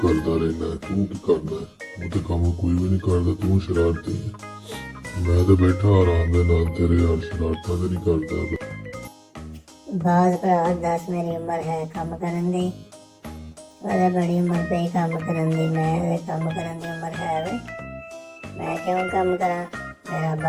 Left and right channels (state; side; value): identical; both; correlation 1.00